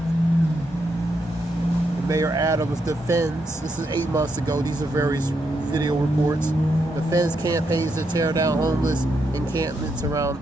Mayor Adams defends, this is 8 months ago, these are various video reports, defends campaigns to tear down homeless encampments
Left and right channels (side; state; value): both; normal; correlation 0.80